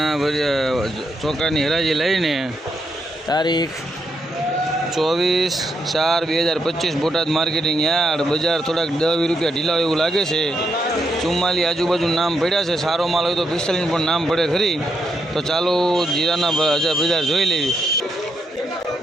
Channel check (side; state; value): both; normal; correlation 0.79